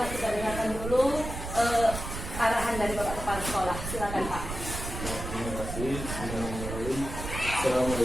kita dengarkan dulu arahan dari Bapak Kepala Sekolah. Silakan Pak. Terima kasih.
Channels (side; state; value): right; noise; rumble, 7 dB below the sound